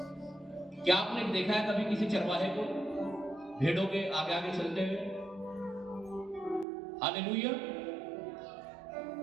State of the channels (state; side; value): drops out; left; at 6.7 s